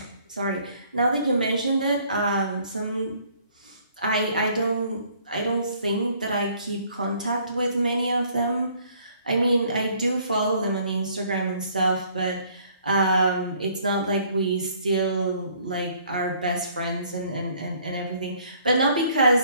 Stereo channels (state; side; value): inverted; both; correlation -0.61